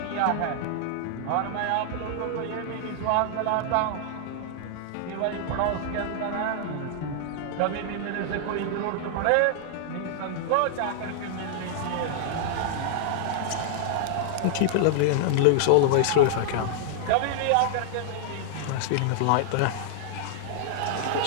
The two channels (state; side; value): different; both; correlation -0.01